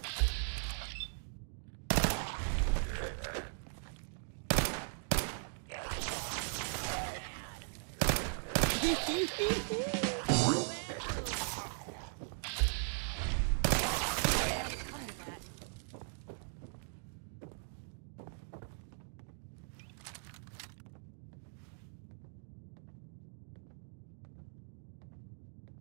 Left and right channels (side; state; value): left; silent; digital silence